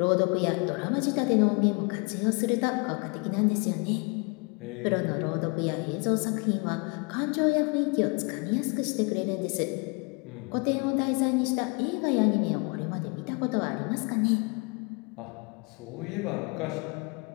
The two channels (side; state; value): right; quieter; 31.8 dB